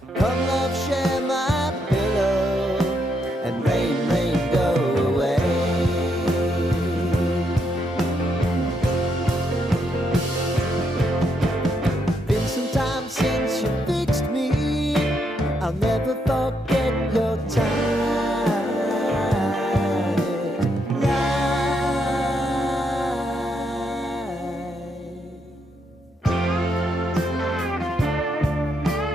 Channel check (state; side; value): normal; both; correlation 0.77